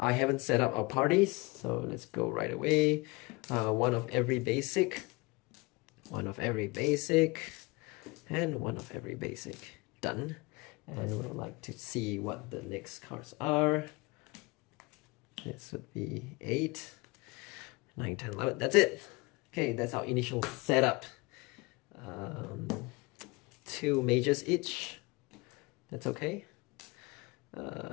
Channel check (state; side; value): quieter; right; 25.7 dB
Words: haven't set up our parties, so let's go right away. One of every basic, one of every basic, and one of every basic. Done. And we'd like to see what the next cards are. This would be 8. 9, 10, 11, that's it. Okay, that's our initial setup. 2 mages each, that's okay.